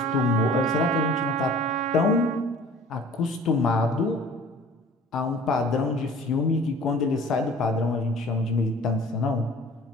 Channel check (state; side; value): normal; both; correlation 0.47